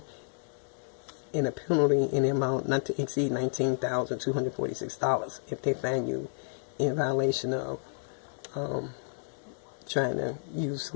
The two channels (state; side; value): silent; right; digital silence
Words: in a penalty in the amount not to exceed $19,246 if they find you in violation of trying to use